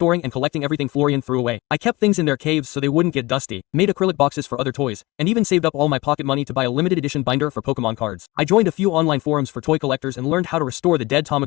and collecting everything Florian threw away. I kept things in their caves so they wouldn't get dusty, made acrylic boxes for other toys, and even saved up all my pocket money to buy a limited edition binder for Pokemon cards. I joined a few online forums for toy collectors and learned how to restore the dead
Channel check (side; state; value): right; quieter; 21.4 dB